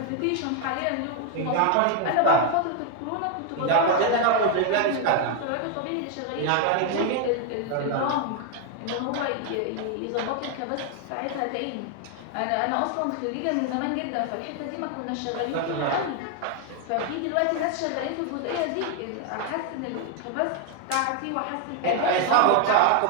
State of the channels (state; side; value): different; both; correlation 0.00